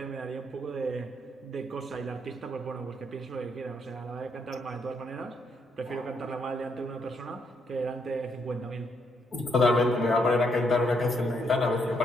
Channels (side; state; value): both; normal; correlation 0.74